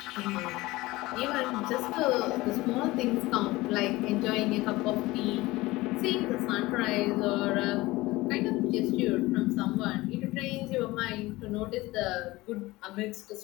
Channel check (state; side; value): quieter; right; 19.8 dB